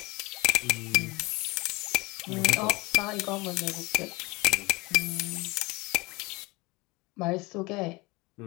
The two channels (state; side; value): quieter; right; 23.9 dB